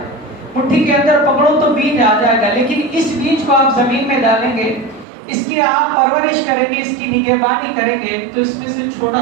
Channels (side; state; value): left; drops out; at 5.1 s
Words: مٹھی کے اندر پکڑو تو بیج آ جائے گا، لیکن اس بیج کو آپ زمین میں ڈالیں گے، اس کی آپ پرورش کریں گے، اس کی نگہبانی کریں گے تو اس میں سے